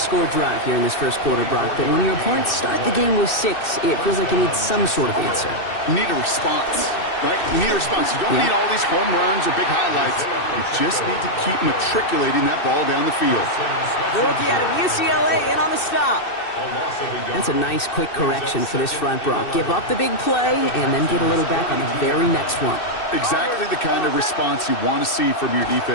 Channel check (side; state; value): right; late; 2.6 ms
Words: drive here in this 1st quarter, Brock, but when your opponents start the game with 6, it feels like you need some sort of answer. You need a response, right? You need a response. You don't need all these home runs or big highlights. You just need to keep matriculating that ball down the field. The rookie out of UCLA in on the stop. That's a nice, quick correction for this front, Brock. Give up the big play and then get a little back on the very next one. Exactly the kind of response you want to see from your